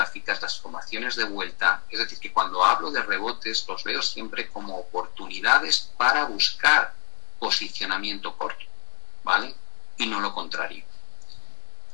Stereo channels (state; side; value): quieter; right; 36.9 dB